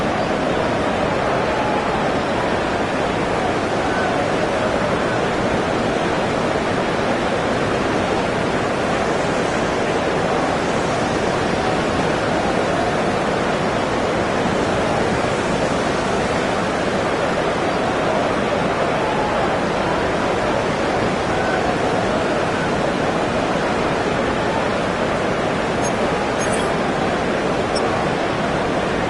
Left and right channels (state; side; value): identical; both; correlation 1.00